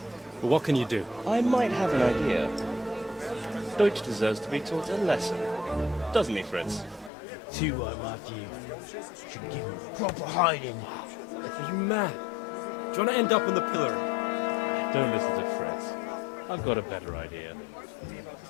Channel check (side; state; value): right; drops out; at 7.1 s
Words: But what can you do? I might have an idea. Deutsch deserves to be taught a lesson. Doesn't he, Fritz? Too right, Matthew. Should give him proper hiding. Are you mad? Do you want to end up on the pillory? Don't listen to Fritz. I've got a better idea.